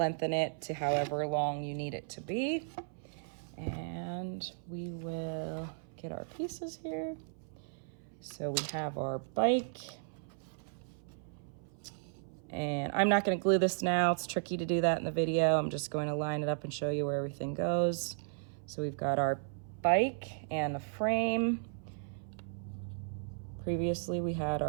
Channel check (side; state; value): left; silent; 54 dB below the other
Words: it to however long you need it to be. And we will get our pieces here. So we have our bike. And I'm not gonna glue this now. It's tricky to do that in the video. I'm just going to line it up and show you where everything goes. So we've got our bike and the frame. Previously we had